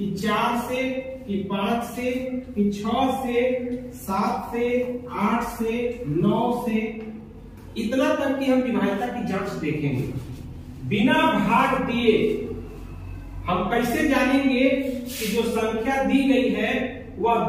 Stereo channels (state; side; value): identical; both; correlation 1.00